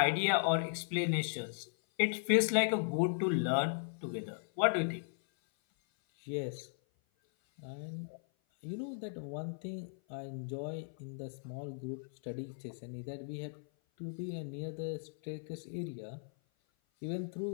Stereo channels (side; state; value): right; silent; 53 dB below the other